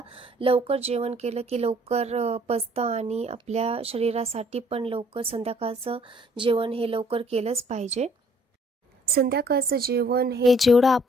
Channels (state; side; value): normal; both; correlation 0.60